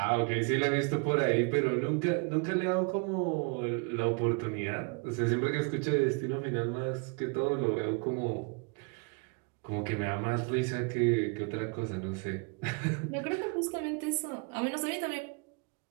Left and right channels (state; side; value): quieter; left; 33.0 dB